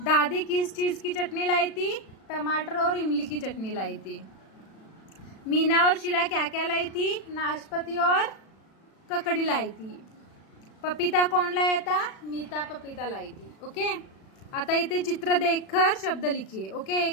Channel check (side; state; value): right; late; 36 ms